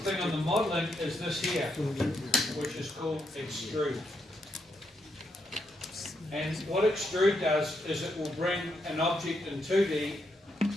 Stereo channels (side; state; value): both; normal; correlation 0.79